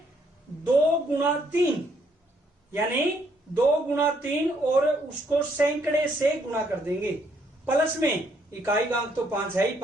2 गुणा 3 यानी 2 गुणा 3 और उसको सैकड़े से गुणा कर देंगे। प्लस में इकाई का अंक तो 5 है ही,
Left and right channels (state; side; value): normal; both; correlation 0.70